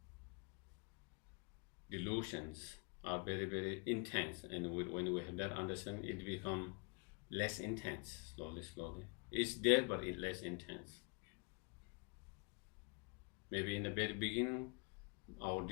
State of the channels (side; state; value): right; quieter; 34.7 dB